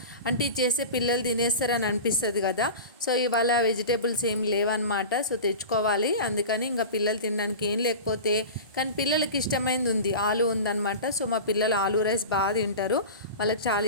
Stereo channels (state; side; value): inverted; both; correlation -0.31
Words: అంటే ఇది చేస్తే పిల్లలు తినేస్తారని అనిపిస్తుంది కదా. సో ఇవాళ వెజిటేబుల్స్ ఏం లేవన్నమాట. సో తెచ్చుకోవాలి. అందుకని ఇంకా పిల్లలు తినడానికి ఏం లేకపోతే కానీ పిల్లలకి ఇష్టమైంది ఉంది, ఆలు ఉందన్నమాట. సో మా పిల్లలు ఆలు రైస్ బాగా తింటారు, వాళ్ళకి చాలా